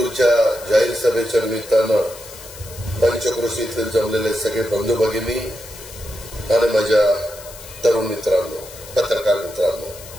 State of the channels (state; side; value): noise; left; hiss, 16 dB below the sound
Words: जाहीर सभेच्या निमित्तानं पंचक्रोशीतील जमलेले सगळे बंधू भगिनी आणि माझ्या तरुण मित्रांनो, पत्रकार मित्रांनो,